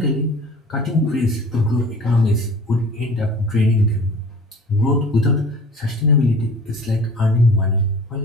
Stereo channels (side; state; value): both; normal; correlation 0.44